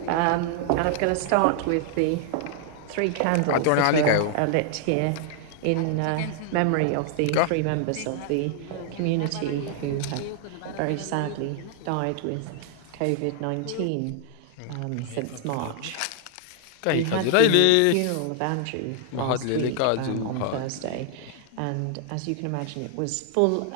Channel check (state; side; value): different; both; correlation 0.00